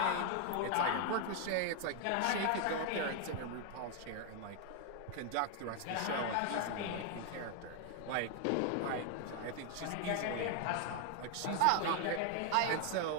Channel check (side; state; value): both; different; correlation 0.00